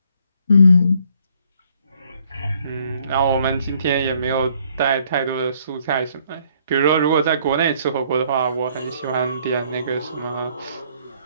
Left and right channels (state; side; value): inverted; both; correlation -0.65